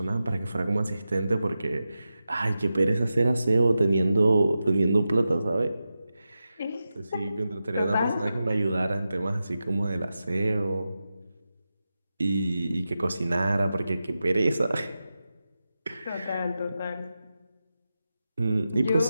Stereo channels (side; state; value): both; inverted; correlation -0.92